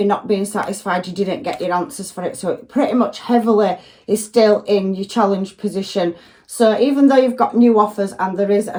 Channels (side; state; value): both; identical; correlation 1.00